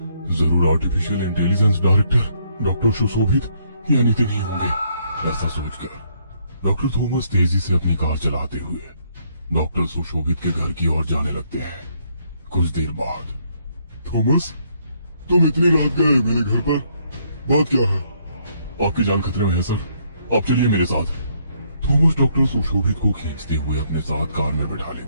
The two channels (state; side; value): inverted; both; correlation -0.70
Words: जरूर आर्टिफिशियल इंटेलिजेंस डायरेक्टर डॉक्टर सुशोभित या नितिन ही होंगे। ऐसा सोचकर डॉक्टर थॉमस तेजी से अपनी कार चलाते हुए डॉक्टर सुशोभित के घर की ओर जाने लगते हैं। कुछ देर बाद, थॉमस, तुम इतनी रात गए मेरे घर पर, बात क्या है? आपकी जान खतरे में है सर, आप चलिए मेरे साथ। थॉमस डॉक्टर सुशोभित को खींचते हुए अपने साथ कार में बैठा